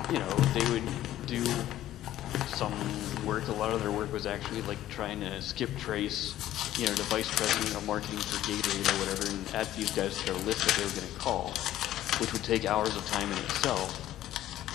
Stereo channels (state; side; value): quieter; right; 13.4 dB